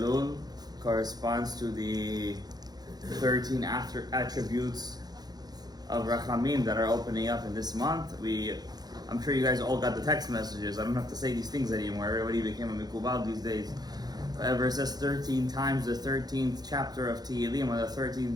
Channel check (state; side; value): late; left; 0.19 ms